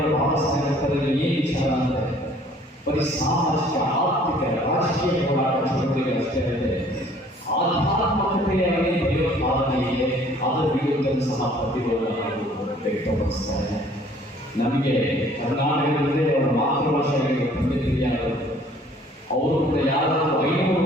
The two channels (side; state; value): both; normal; correlation 0.56